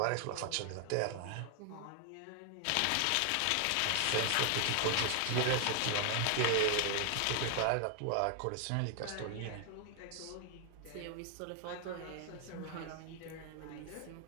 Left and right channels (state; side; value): different; both; correlation 0.00